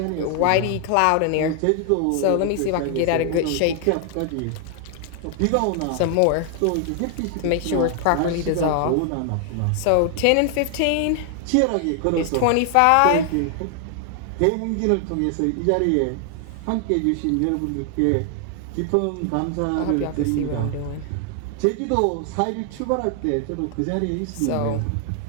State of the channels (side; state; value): both; different; correlation 0.00